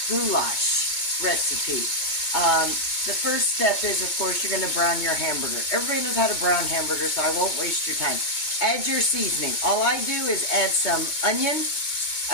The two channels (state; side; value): late; right; 2.2 ms